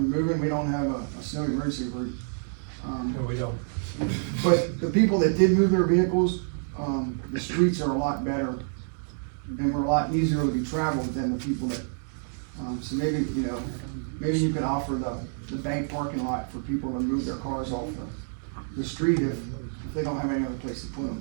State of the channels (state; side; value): silent; left; digital silence